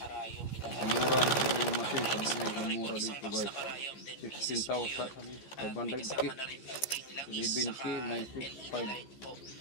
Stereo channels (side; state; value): right; late; 14 ms